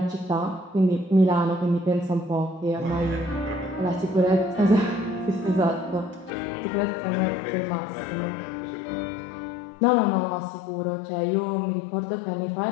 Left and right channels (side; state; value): right; drops out; at 6.3 s